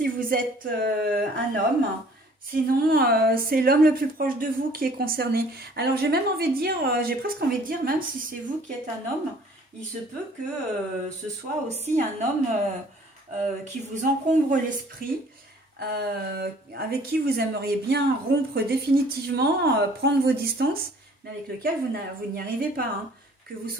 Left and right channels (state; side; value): normal; both; correlation 0.55